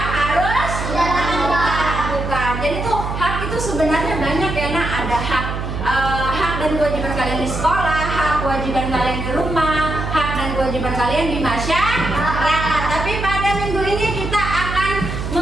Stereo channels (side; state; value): right; noise; hum, 4 dB below the sound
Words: harus kita lakukan. Jadi tuh hak itu sebenarnya banyak ya. Nah, ada hak dan kewajiban kalian di sekolah, hak kewajiban kalian di rumah, hak dan kewajiban kalian di masyarakat. Tapi pada minggu ini kita akan